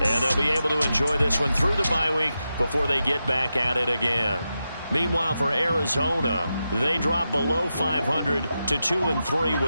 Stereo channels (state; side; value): inverted; both; correlation -0.89